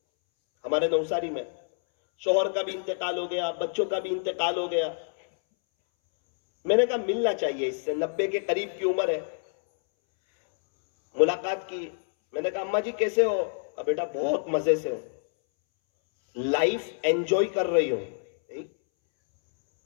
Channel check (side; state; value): right; silent; 60 dB below the other